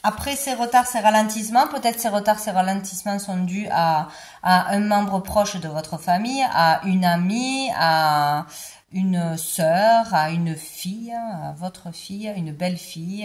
après ces retards, ces ralentissements, peut-être ces retards, ces ralentissements sont dus à un membre proche de votre famille, à une amie, à une sœur, à une fille, à votre fille, une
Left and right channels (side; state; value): both; identical; correlation 1.00